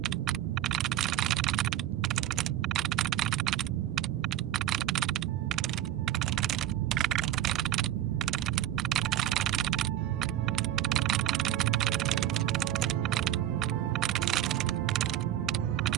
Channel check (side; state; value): left; quieter; 12.3 dB